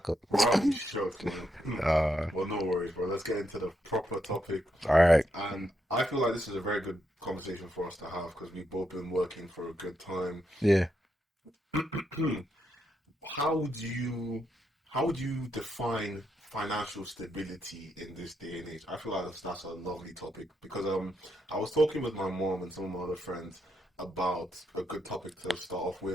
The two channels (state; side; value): normal; both; correlation 0.80